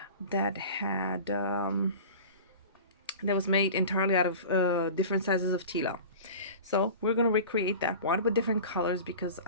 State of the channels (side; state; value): both; inverted; correlation -0.36